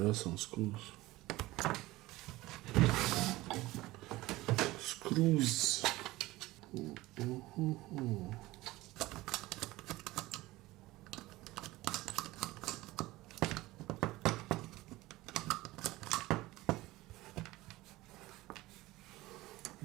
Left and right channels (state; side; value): quieter; left; 18.7 dB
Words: are some screws. Screws.